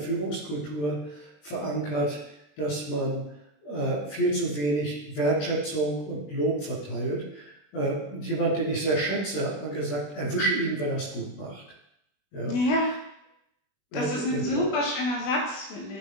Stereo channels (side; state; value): right; late; 20 ms